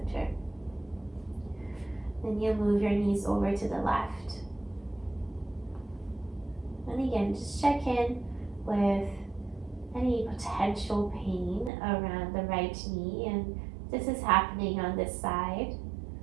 Then you'll move your knees over to the left. And again, just check in with any potential pain around the right knee, and this is happening on this side.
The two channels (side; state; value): left; drops out; at 11.7 s